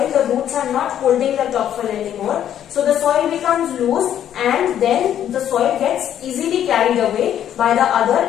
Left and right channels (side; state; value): right; quieter; 10.4 dB